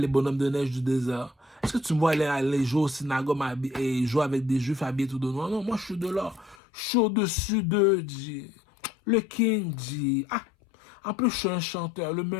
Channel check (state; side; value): drops out; right; at 6.6 s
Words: les bonhommes de neige du désert. Est-ce que tu me vois aller jouer au synagogue et jouer avec des juifs habillés tout de noir? Non, moi je suis de l'ordre. Je suis au-dessus d'eux, dit. Le King dit. Ah! En plus, je suis un chanteur, le